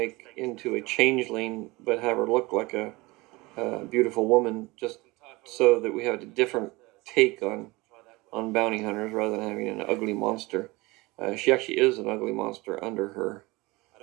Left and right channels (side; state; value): left; quieter; 22.8 dB